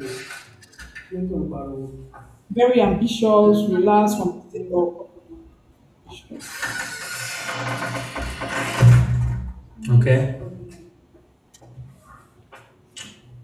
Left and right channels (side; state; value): both; identical; correlation 1.00